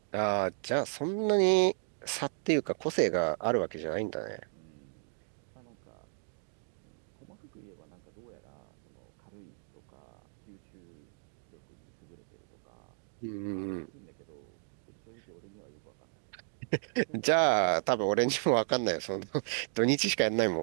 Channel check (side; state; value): left; silent; digital silence